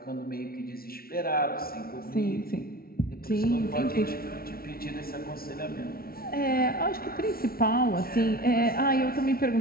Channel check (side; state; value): right; late; 0.44 ms